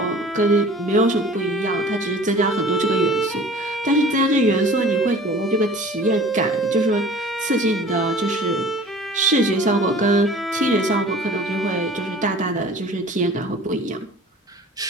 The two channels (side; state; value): both; normal; correlation 0.45